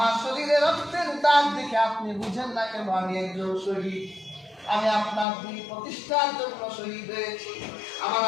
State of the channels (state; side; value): drops out; right; at 5.2 s